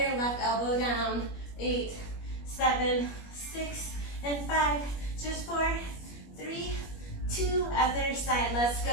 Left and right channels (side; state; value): right; late; 21 ms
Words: left elbow down. 8, 7, 6, and 5. Just 4, 3, 2. Other side. Let's